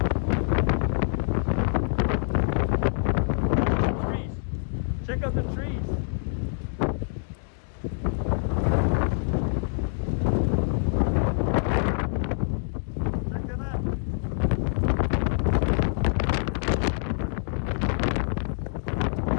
Trees. Check out the trees. Check it out.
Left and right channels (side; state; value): right; silent; digital silence